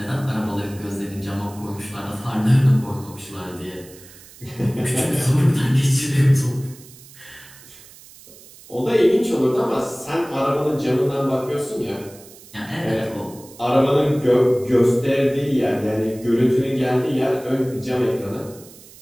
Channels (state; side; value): noise; right; hiss, 21 dB below the sound